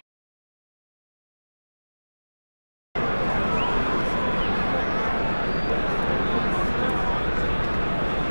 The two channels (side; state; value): both; inverted; correlation -1.00